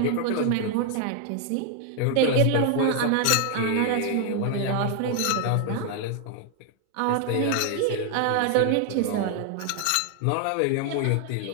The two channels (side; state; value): both; different; correlation 0.00